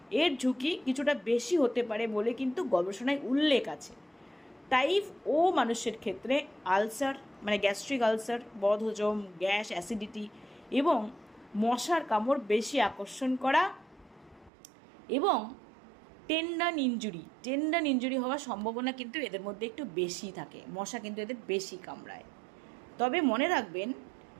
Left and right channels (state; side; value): drops out; left; at 14.5 s